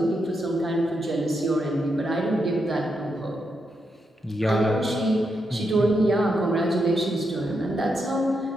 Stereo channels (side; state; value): both; normal; correlation 0.83